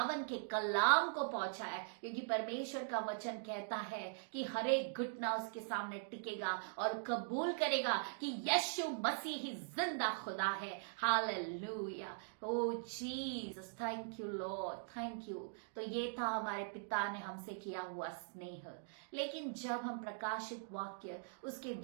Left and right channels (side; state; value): left; silent; digital silence